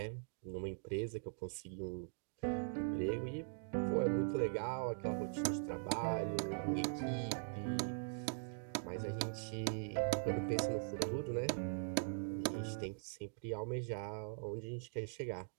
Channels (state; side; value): silent; left; digital silence